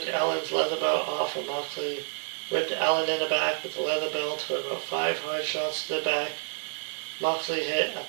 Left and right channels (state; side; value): silent; left; digital silence